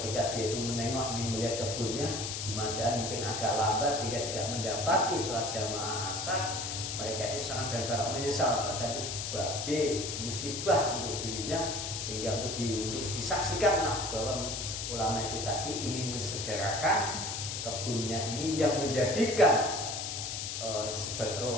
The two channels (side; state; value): left; noise; hiss, 4 dB below the sound